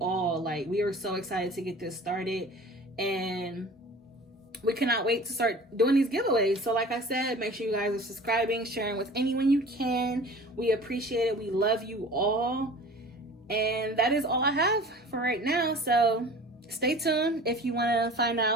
Like, we are so excited to get this started, and we cannot wait to start doing these giveaways. So like I said, make sure you guys are subscribing, sharing with anyone you can. We appreciate it. We love you all. And that is all I have for right now. So stay tuned if you want to find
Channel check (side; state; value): both; normal; correlation 0.42